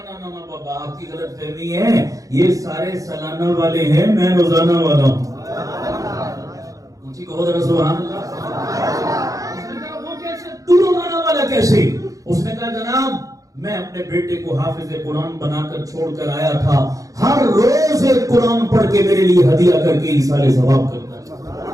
نا نا بابا آپ کی غلط فہمی ہے، یہ سارے سالانہ والے ہیں، میں روزانہ والا ہوں. اونچی کہو ذرا سبحان اللہ. اس نے کہا وہ کیسے، تو روزانہ والا کیسے؟ اس نے کہا جناب میں اپنے بیٹے کو حافظ قرآن بنا کر چھوڑ کر آیا تھا، ہر روز ایک قرآن پڑھ کے میرے لیے ہدیہ کر کے ایصال ثواب کرتا ہے.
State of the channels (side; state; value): left; late; 0.17 ms